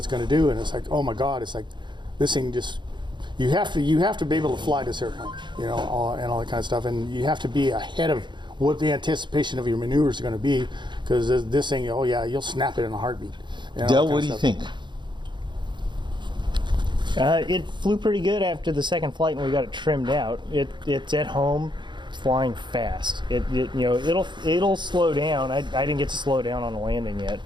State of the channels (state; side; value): late; left; 0.22 ms